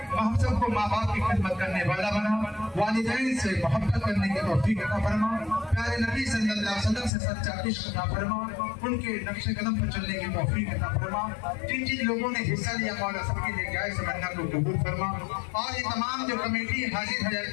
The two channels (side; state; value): right; drops out; at 7.1 s